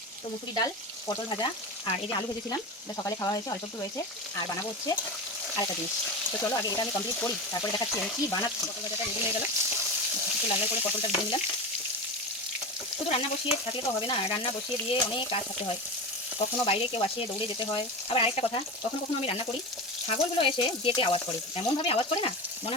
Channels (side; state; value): both; normal; correlation 0.24